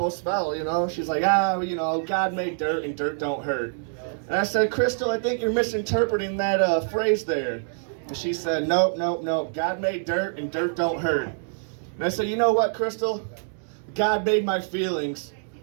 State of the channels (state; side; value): silent; left; digital silence